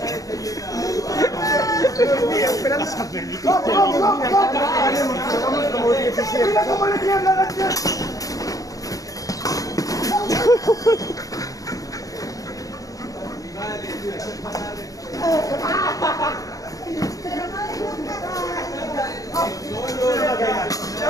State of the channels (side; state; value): right; late; 0.17 ms